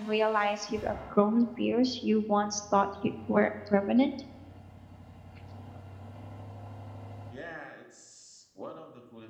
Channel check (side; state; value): both; identical; correlation 1.00